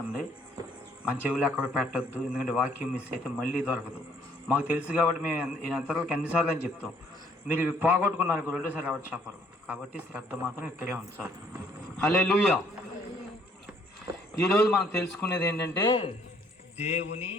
మన చెవులు ఎక్కడ పెట్టద్దు. ఎందుకంటే వాక్యం మిస్ అయితే మళ్ళీ దొరకదు. మాకు తెలుసు కాబట్టి మేము ఎంతవరకు ఎన్నిసార్లు అని చెప్తాం. మీరు ఇవి పోగొట్టుకున్నారు రెండోసారి ఎవరు చెప్పరు. కాబట్టి శ్రద్ధ మాత్రం ఇక్కడే ఉంచాలి. హల్లెలూయా. ఈరోజు మనం తెలుసుకునేది ఏంటంటే దేవుని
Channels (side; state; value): both; normal; correlation 0.64